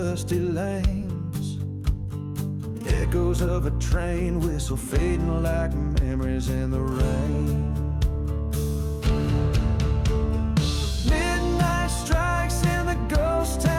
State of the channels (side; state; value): both; identical; correlation 1.00